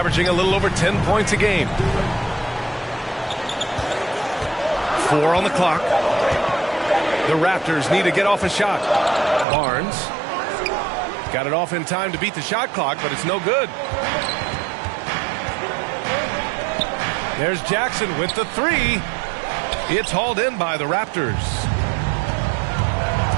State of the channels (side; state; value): left; drops out; at 9.5 s